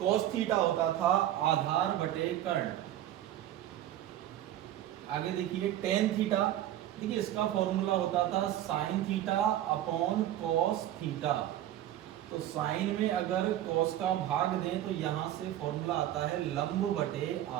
थीटा होता था आधार बटे कर्ण। आगे देखिए टेन थीटा। देखिए, इसका फॉर्मूला होता था sine theta upon cos theta. तो साइन में अगर कॉस का भाग दें तो यहां से फॉर्मूला आता है लंब बटे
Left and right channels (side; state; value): left; quieter; 12.7 dB